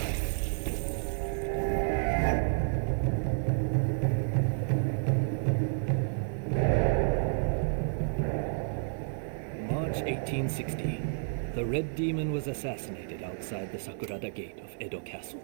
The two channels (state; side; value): silent; left; digital silence